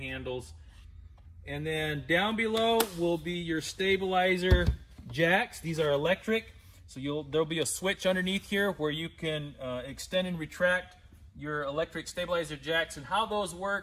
And then down below will be your stabilizer jacks. These are electric, so there'll be a switch underneath here where you can extend and retract your electric stabilizer jacks. And how those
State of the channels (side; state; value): both; identical; correlation 1.00